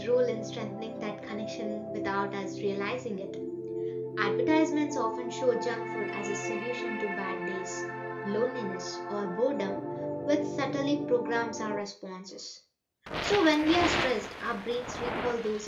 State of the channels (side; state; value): both; identical; correlation 1.00